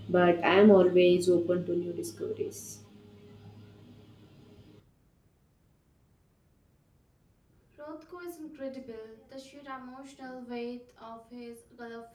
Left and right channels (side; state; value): both; identical; correlation 1.00